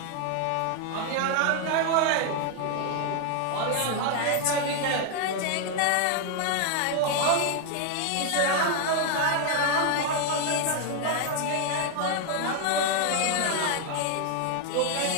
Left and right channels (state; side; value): different; both; correlation 0.00